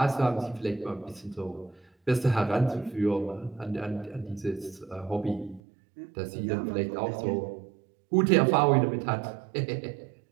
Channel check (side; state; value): left; drops out; at 5.6 s